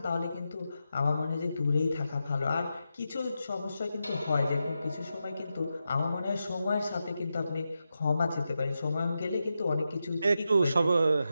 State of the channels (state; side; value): inverted; both; correlation -0.88